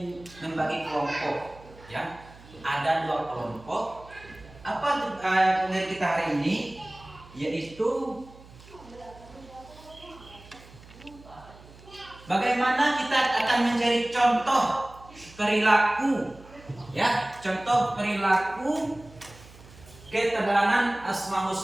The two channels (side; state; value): right; noise; hum, 21 dB below the sound